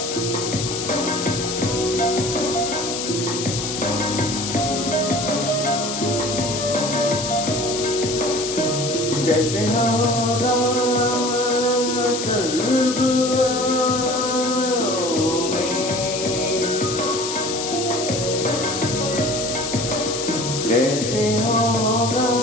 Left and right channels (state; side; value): noise; left; hiss, 4 dB below the sound